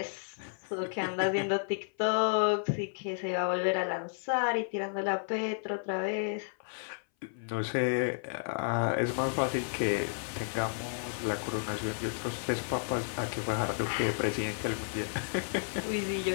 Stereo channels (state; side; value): silent; right; 56 dB below the other